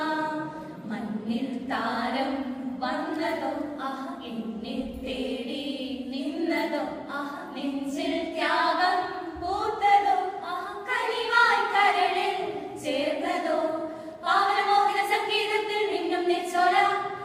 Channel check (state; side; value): identical; both; correlation 1.00